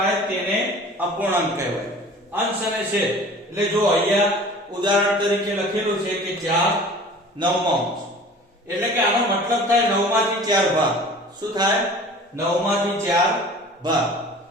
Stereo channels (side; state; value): both; normal; correlation 0.44